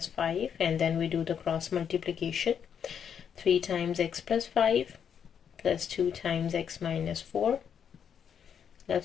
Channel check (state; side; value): quieter; right; 7.9 dB